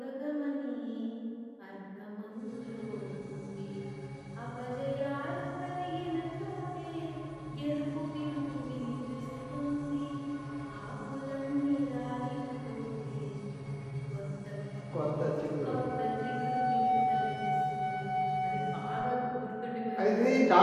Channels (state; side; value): identical; both; correlation 1.00